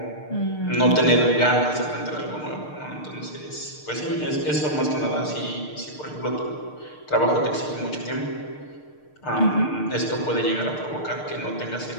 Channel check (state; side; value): late; right; 6.6 ms